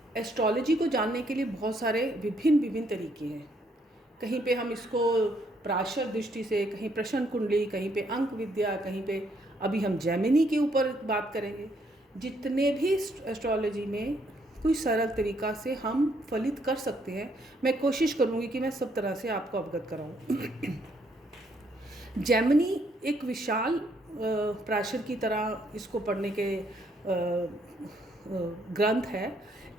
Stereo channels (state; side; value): normal; both; correlation 0.71